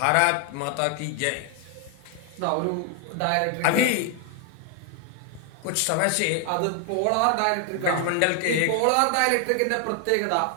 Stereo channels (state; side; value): different; both; correlation 0.00